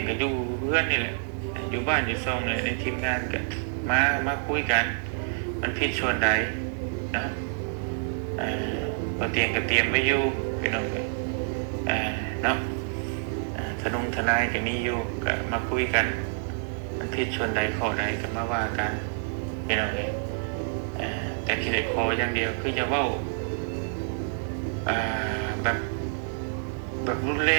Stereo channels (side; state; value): left; silent; digital silence